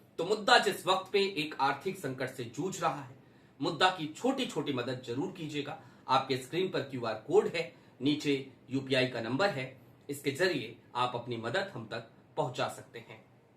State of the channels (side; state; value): both; identical; correlation 1.00